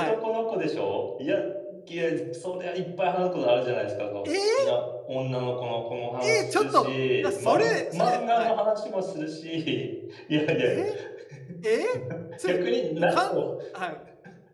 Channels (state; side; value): identical; both; correlation 1.00